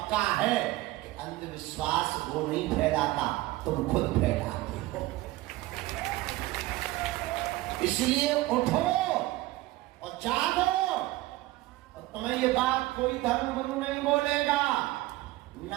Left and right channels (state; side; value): quieter; left; 18.4 dB